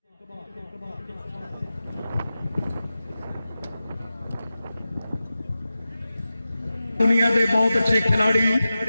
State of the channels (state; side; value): inverted; both; correlation -0.94